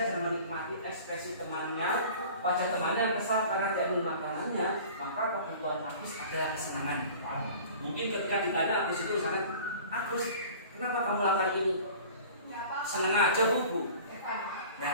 dan menikmati ekspresi temannya, wajah temannya yang kesal karena dia belum makanannya, maka kebutuhan Agus adalah kesenangan. Mungkin ketika ditanya Agus itu misalnya, Agus, kenapa kamu lakukan ini? Senang aja Bu. Nah,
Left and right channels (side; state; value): both; inverted; correlation -0.43